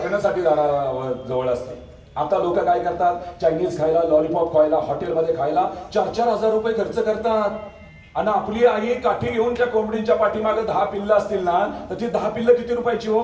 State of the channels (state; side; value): identical; both; correlation 1.00